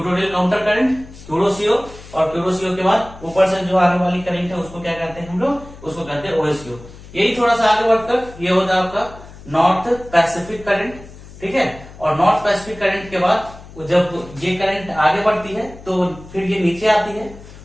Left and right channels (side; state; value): left; noise; hum, 18 dB below the sound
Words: counter current, Kuroshio, और क्यूरोसीओ के बाद ऊपर से जो आने वाली करंट है उसको क्या कहते हैं हम लोग, उसको कहते हैं ओएसयू। यही थोड़ा सा आगे बढ़कर ये होता है आपका नॉर्थ पैसिफिक करंट। ठीक है, और नॉर्थ पैसिफिक करंट के बाद जब ये करंट आगे बढ़ती है तो फिर ये नीचे आती है,